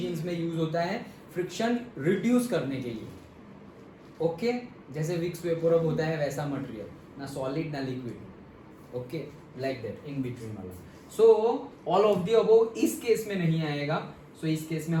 में यूज होता है फ्रिक्शन रिड्यूस करने के लिए ओके। जैसे विक्स वेपोरब होता है वैसा मटेरियल, ना सॉलिड ना liquid okay, like that in between वाला। So all of the above इस केस में नहीं आएगा। सो इस केस में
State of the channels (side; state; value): both; identical; correlation 1.00